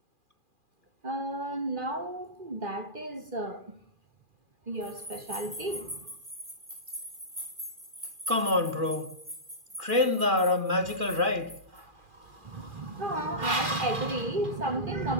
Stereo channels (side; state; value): left; late; 2.4 ms